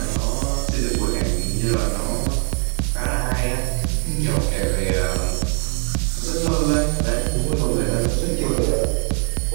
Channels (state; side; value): quieter; left; 34.5 dB